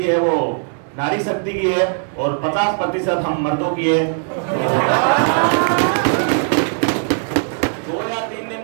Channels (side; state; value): left; silent; 67 dB below the other